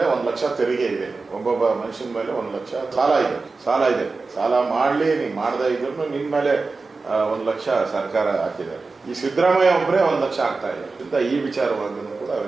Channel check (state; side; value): quieter; left; 4.0 dB